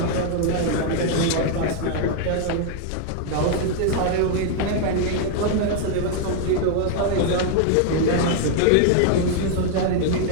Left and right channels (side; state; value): both; different; correlation 0.00